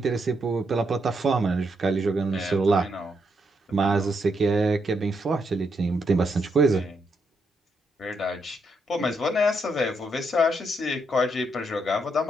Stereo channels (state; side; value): normal; both; correlation 0.78